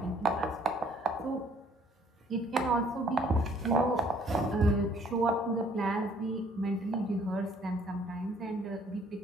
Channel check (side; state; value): both; normal; correlation 0.61